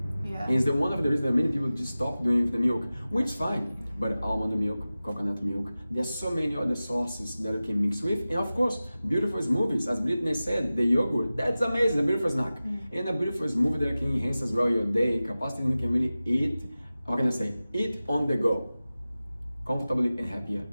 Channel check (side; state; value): both; inverted; correlation -0.96